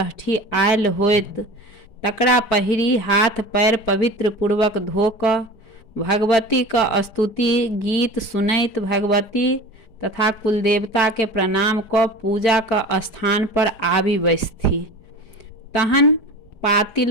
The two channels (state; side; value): late; right; 4.9 ms